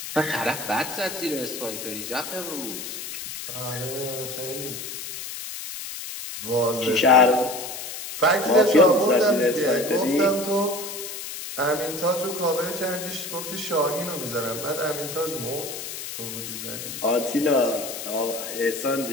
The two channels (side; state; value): left; noise; hiss, 8 dB below the sound